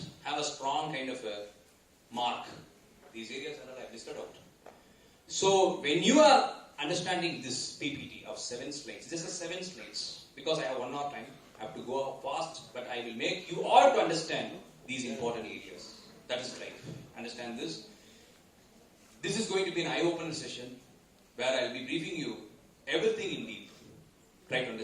have a strong kind of a mark. These areas are all I've listed out. So when you are understanding this PPT of 7 slides, this is 7 slides. Because I have 1 hour time, I have to go fast, but I will make you all to understand these important areas. That is life. Understand this? This is going to be an eye-opener session where I will be briefing you everything in deep. Try to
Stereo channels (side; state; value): both; identical; correlation 1.00